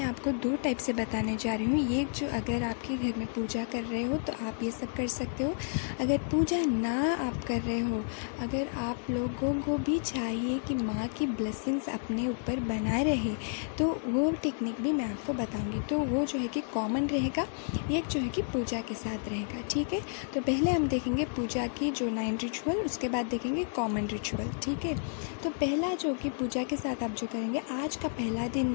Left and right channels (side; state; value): right; silent; digital silence